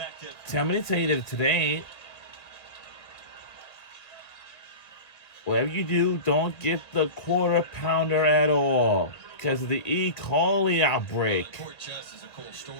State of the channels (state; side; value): late; right; 2.0 ms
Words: tell me to tell you that today, whatever you do, don't get the quarter pounder at all because of the E. coli outbreak. Court Chess is a cool